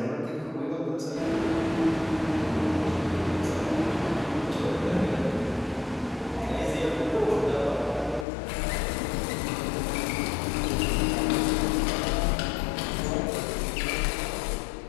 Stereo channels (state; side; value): drops out; right; at 8.2 s